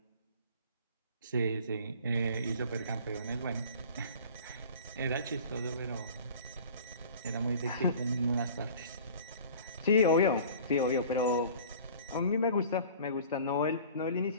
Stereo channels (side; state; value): both; inverted; correlation -0.45